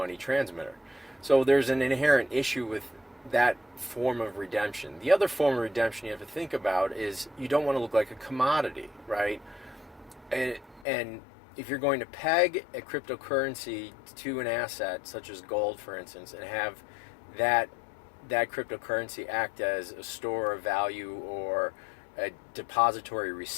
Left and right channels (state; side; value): drops out; right; at 10.9 s